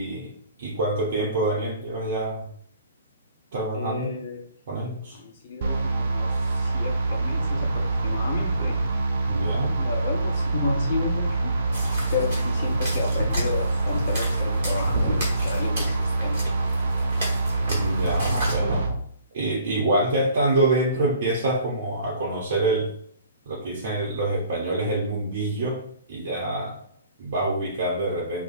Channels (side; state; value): both; inverted; correlation -0.64